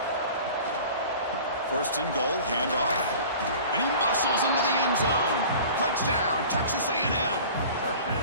First and goal, handoff. And he muscles into the end zone. Touchdown, Texas A&M.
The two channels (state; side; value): inverted; both; correlation -0.42